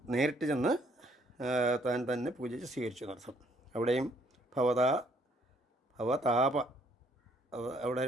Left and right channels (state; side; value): normal; both; correlation 0.66